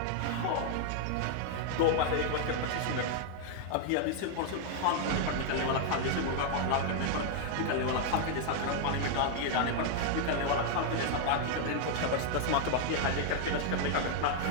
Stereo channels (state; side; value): different; both; correlation 0.00